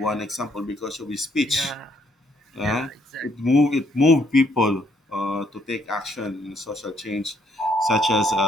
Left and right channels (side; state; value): both; normal; correlation 0.70